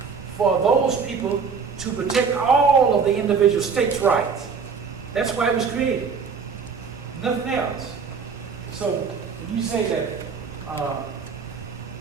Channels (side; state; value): left; quieter; 5.6 dB